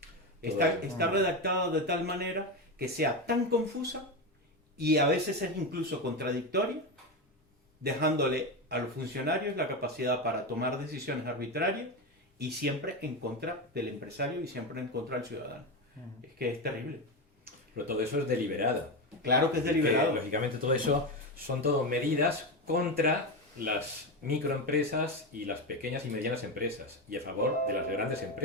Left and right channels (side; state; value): both; normal; correlation 0.15